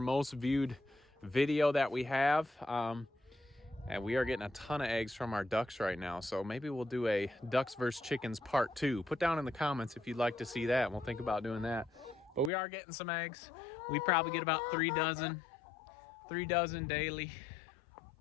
viewed video that we have. And we are getting a ton of eggs from our ducks right now. So maybe we'll do a ducks versus chickens part 2. Put down in the comments if you'd like to see that. We'll think about doing that. But we are getting some eggs. We probably get about 3 dozen daily,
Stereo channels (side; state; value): right; drops out; at 12.5 s